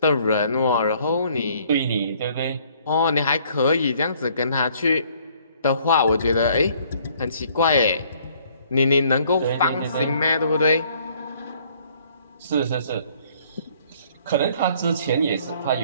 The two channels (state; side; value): inverted; both; correlation -0.61